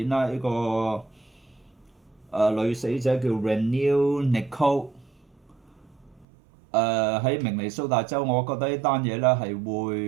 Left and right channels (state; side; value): drops out; left; at 6.2 s